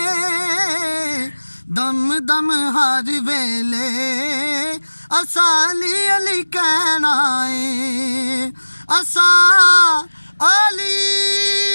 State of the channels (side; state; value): both; inverted; correlation -1.00